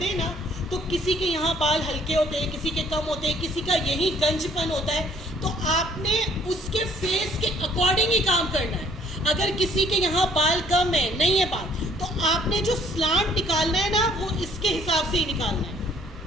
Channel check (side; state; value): both; normal; correlation 0.60